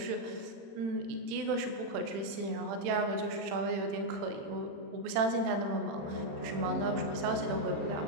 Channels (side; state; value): left; late; 35 ms